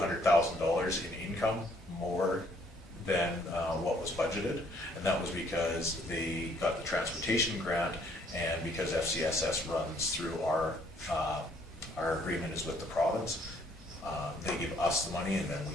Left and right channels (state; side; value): normal; both; correlation 0.64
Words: in income more than what was budgeted, and that was because they got the transportation grant, and because FCSS runs through our agreement is with the province. They give us the money and then